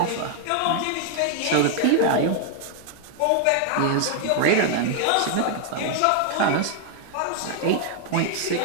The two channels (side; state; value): both; different; correlation 0.00